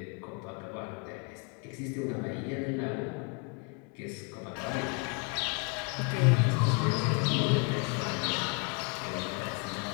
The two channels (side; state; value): right; quieter; 33.0 dB